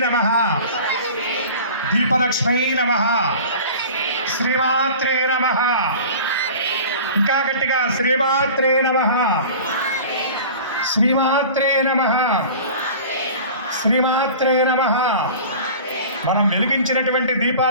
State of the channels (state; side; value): inverted; both; correlation -0.40